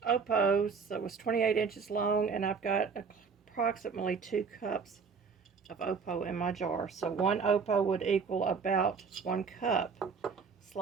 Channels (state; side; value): quieter; left; 5.5 dB